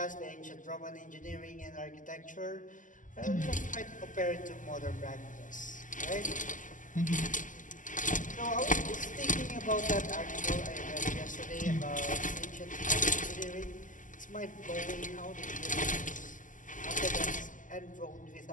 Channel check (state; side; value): late; right; 0.38 ms